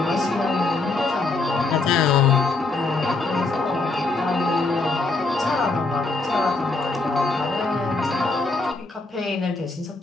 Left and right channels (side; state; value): right; quieter; 3.5 dB